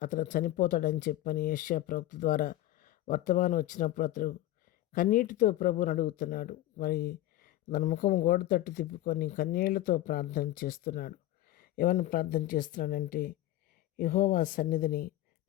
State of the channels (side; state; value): right; quieter; 14.8 dB